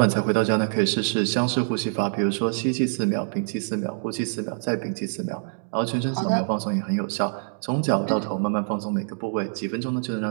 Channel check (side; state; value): left; silent; digital silence